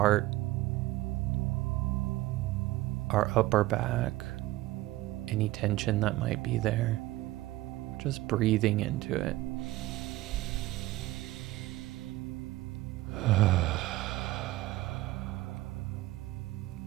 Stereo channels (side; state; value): left; quieter; 17.5 dB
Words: our upper back, any tension that might be there. Just breathing into it.